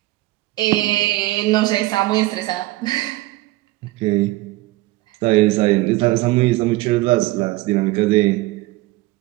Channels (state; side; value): quieter; left; 19.1 dB